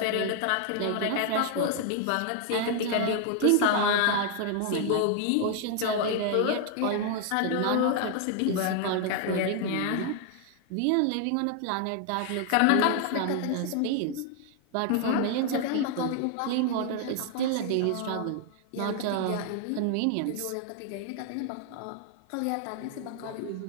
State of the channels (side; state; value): both; different; correlation 0.00